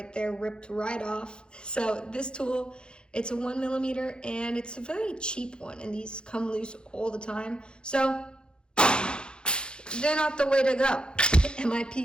there ripped right off. So this tool, it's a 1mm and it's a very cheap one, and these come loose all the time. So they're not the way to go.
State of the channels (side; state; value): right; late; 0.050 ms